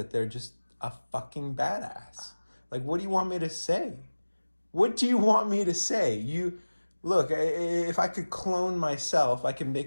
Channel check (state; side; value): inverted; both; correlation -1.00